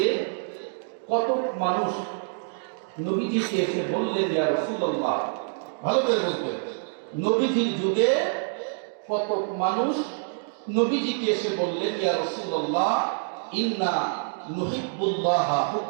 কত মানুষ নবীজিকে এসে বললেন, ইয়া রাসূলুল্লাহ, ভালো করে বলবেন, নবীজির যুগে কত মানুষ নবীজিকে এসে বললেন, ইয়া রাসূলুল্লাহ ইন্না নুহিব্বুল্লাহ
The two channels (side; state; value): left; silent; digital silence